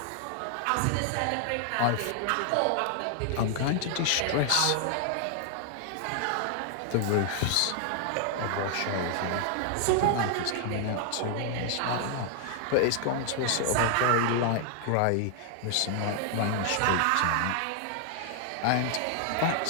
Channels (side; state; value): both; different; correlation 0.00